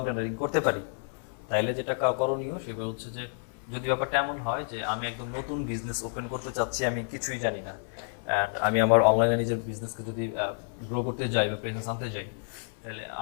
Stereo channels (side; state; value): right; silent; 58 dB below the other